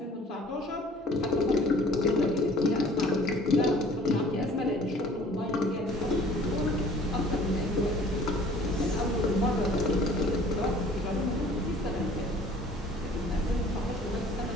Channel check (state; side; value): normal; both; correlation 0.52